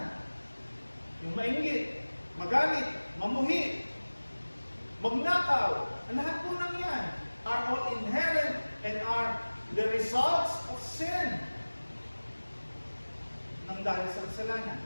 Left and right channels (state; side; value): inverted; both; correlation -1.00